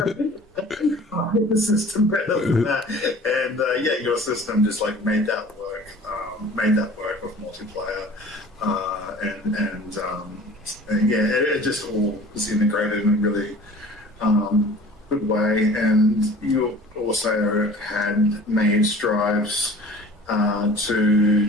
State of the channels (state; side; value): normal; both; correlation 0.45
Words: The system better than that, and your system just like made that work with multiplayer, it just all was integrated in a really good way. And you also had made strives